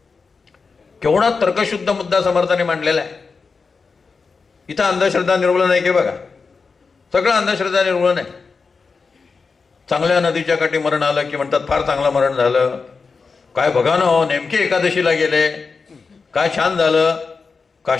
केवढा तर्कशुद्ध मुद्दा समर्थाने मांडलेला आहे. इथं अंधश्रद्धा निर्मूलन आहे की बघा. सगळं अंधश्रद्धा निर्मूलन आहे. चांगल्या नदीच्या काठी मरण आलं की म्हणतात फार चांगलं मरण झालं. काय बघा ना हो, नेमके एकादशीला गेले, काय छान झालं.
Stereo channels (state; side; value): quieter; right; 4.8 dB